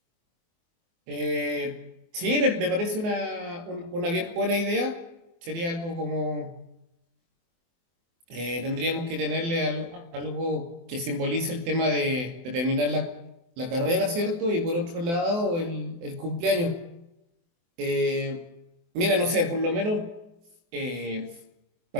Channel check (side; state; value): left; late; 24 ms